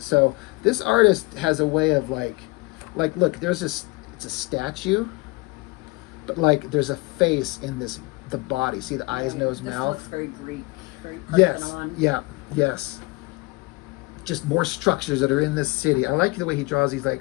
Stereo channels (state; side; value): quieter; right; 24.7 dB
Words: So this artist has a way of like look, there's this, it's a statue, but like there's a face in the body. See the eyes, nose, mouth? Looks very Greek, very Parthenon. Yes, yes. Just more structures that are in this city. I like the way he draws these